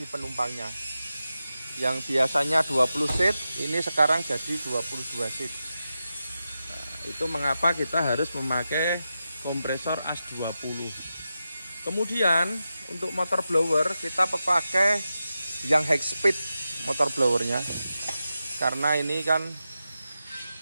penumpangnya. Yang biasanya 20 seat, ini sekarang jadi 22 seat. Nah, itu mengapa kita harus memakai kompresor AS20. Kemudian untuk motor blower kita pakai yang high speed motor blowernya. Karena ini kan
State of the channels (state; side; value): inverted; both; correlation -0.91